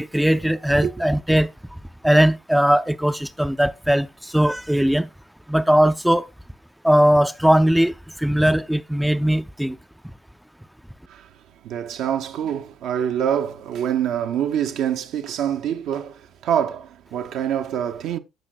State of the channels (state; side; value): normal; both; correlation 0.93